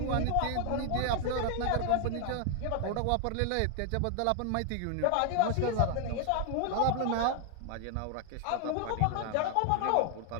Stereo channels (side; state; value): both; different; correlation 0.00